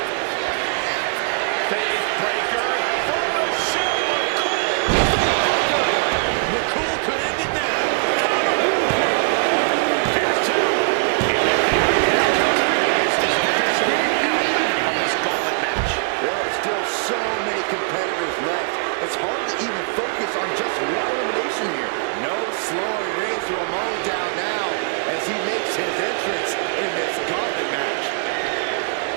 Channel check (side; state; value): left; silent; 65 dB below the other